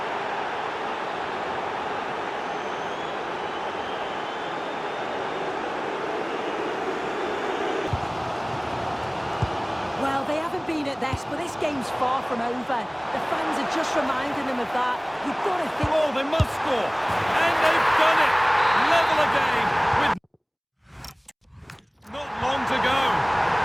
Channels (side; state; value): both; identical; correlation 1.00